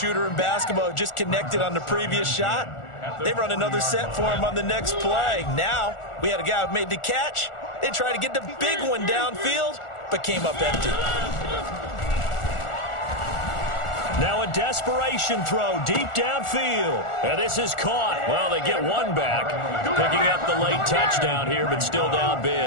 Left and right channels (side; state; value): right; late; 1.4 ms